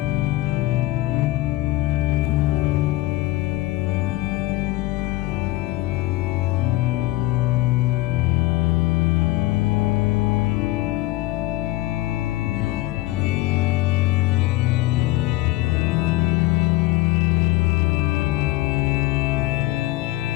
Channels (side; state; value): right; quieter; 18.1 dB